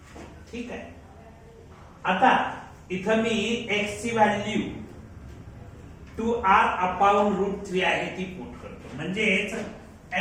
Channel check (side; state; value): both; identical; correlation 1.00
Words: ठीक आहे आता इथं मी एक्स ची व्हॅल्यू 2r अपॉन रूट 3 आहे ती पुट करतो म्हणजेच